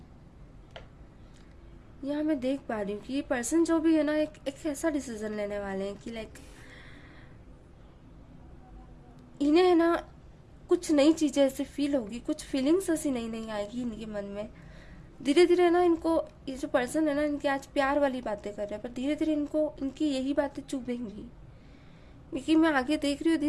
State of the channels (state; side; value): identical; both; correlation 1.00